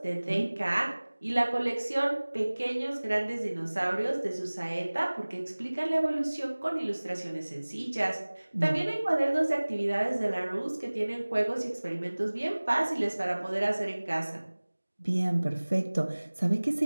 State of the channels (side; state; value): both; inverted; correlation -1.00